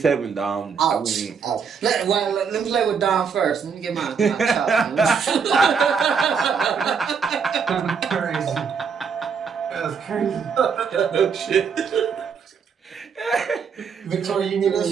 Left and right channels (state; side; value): quieter; left; 6.3 dB